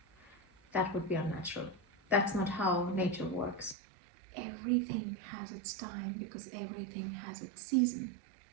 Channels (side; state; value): left; drops out; at 3.8 s